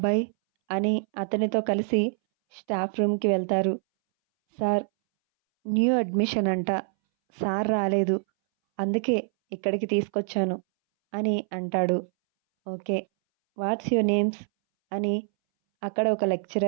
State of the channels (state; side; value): silent; left; 61 dB below the other